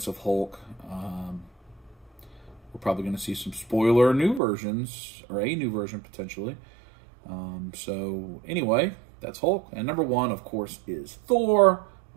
of Hulk. We're probably going to see some spoiler new versions, or a new version potentially. So anyway, that's Hulk. And number 1, of course, is Thor,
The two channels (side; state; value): left; drops out; at 4.4 s